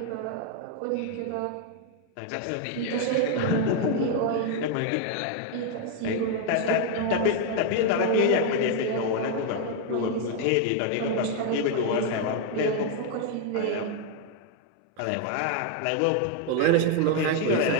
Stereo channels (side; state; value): both; different; correlation 0.00